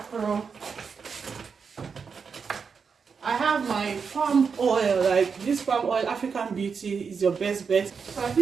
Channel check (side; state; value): left; quieter; 5.8 dB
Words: I have my palm oil. Like, this palm oil, African Beauty, is your best bet. So I